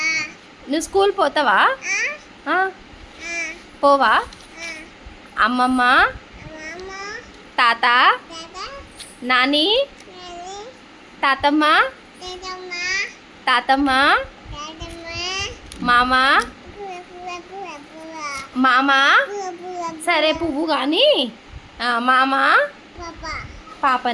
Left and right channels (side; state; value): both; identical; correlation 1.00